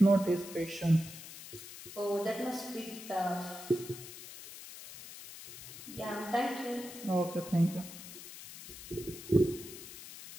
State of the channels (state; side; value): noise; left; hiss, 13 dB below the sound